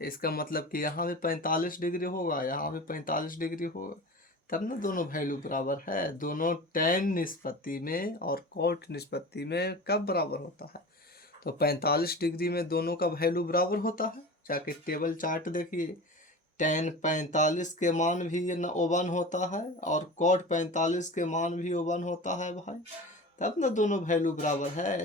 इसका मतलब कि यहाँ भी 45 डिग्री होगा, यहाँ भी 45 डिग्री होगा, तब ना दोनों वैल्यू बराबर है। दोनों tan निष्पत्ति में और cot निष्पत्ति में कब बराबर होता है? तो 45 डिग्री में दोनों का वैल्यू बराबर होता है। जाके टेबल चार्ट देखिए, tan 45 के मान भी ओवन होता है और cot 45 के मान भी ओवन होता है भाई, तब ना दोनों वैल्यू बराबर है।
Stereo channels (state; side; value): normal; both; correlation 0.33